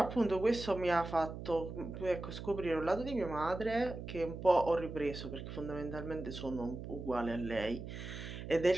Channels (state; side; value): noise; right; hum, 9 dB below the sound